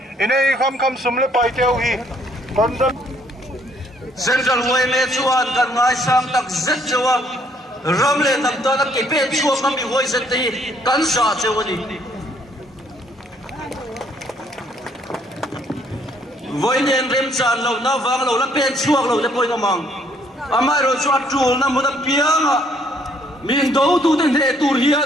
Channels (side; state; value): both; normal; correlation 0.66